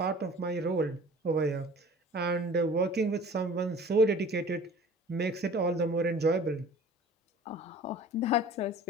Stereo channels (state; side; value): normal; both; correlation 0.45